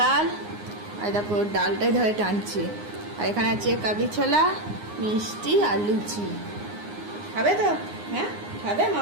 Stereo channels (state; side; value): late; left; 9.7 ms